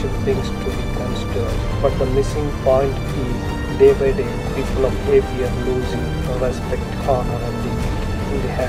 things to be considered. But the missing point is day by day people of AP are losing respect, honor and dignity in the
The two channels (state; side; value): identical; both; correlation 1.00